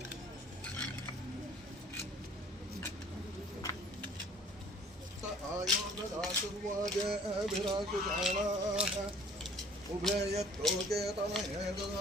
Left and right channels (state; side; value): normal; both; correlation 0.53